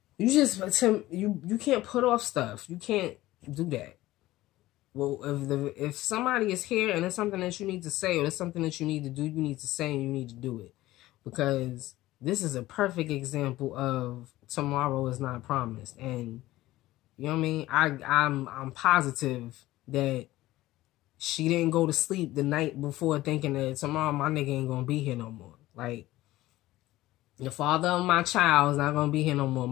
You can't put off stuff. You can't do that. Well, if somebody is here and there's something that you need to say or there's something that you need to do, you need to say and you need to do it. Because this is a perfect example of tomorrow is not promised. And you know what I mean? I'm positive that she didn't go to sleep the night before thinking that tomorrow my nigga ain't gonna be here no more. Like, the father of my child is not gonna be here no more.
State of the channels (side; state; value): right; quieter; 16.7 dB